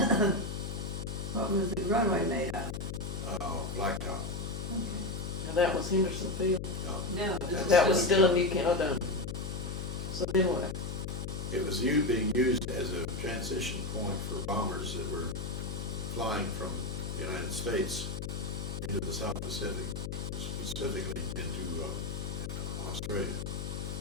What was the runway made of? Blacktop. Okay. Now that was Henderson Field. No, That's- That was still in New Canada. So then what? It was being used as a transition point for bombers that were flying from the United States into the South Pacific, specifically into Australia.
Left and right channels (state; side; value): noise; left; hum, 4 dB below the sound